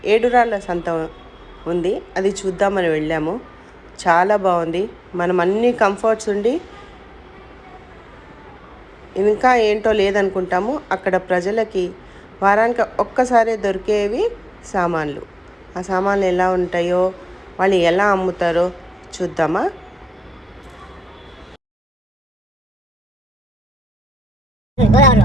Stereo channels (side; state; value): both; normal; correlation 0.92